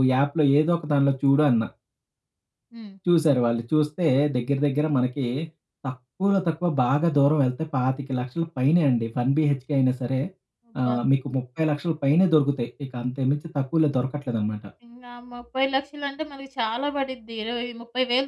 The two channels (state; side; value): identical; both; correlation 1.00